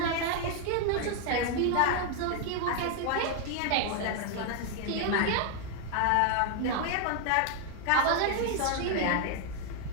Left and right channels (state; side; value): different; both; correlation 0.01